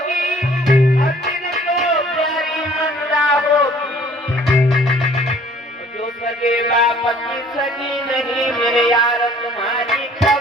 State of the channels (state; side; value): normal; both; correlation 0.55